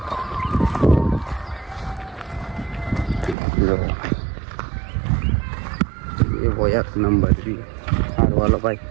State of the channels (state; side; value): drops out; left; at 3.4 s